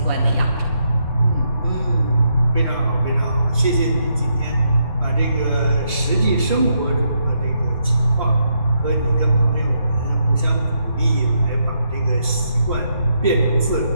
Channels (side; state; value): both; inverted; correlation -0.79